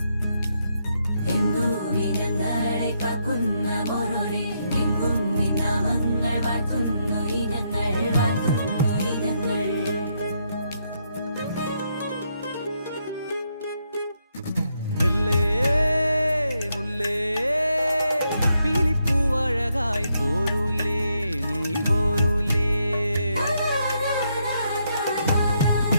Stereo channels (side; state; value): both; inverted; correlation -0.78